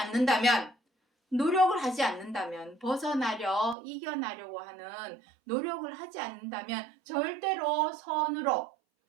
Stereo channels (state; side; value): drops out; left; at 3.8 s